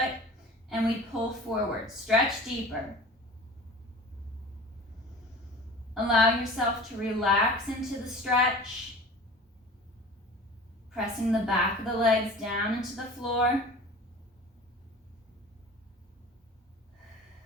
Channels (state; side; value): normal; both; correlation 0.40